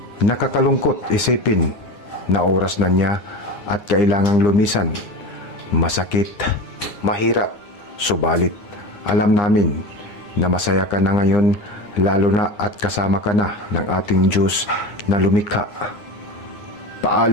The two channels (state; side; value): late; right; 9.8 ms